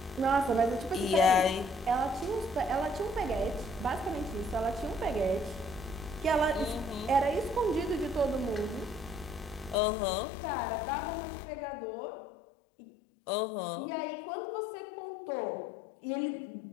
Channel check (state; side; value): drops out; right; at 9.8 s